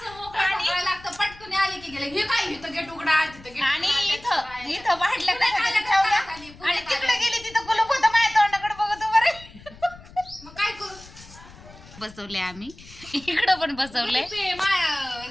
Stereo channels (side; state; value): left; noise; rumble, 20 dB below the sound